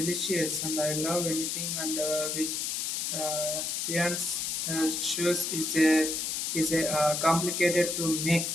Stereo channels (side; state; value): left; noise; hiss, 1 dB below the sound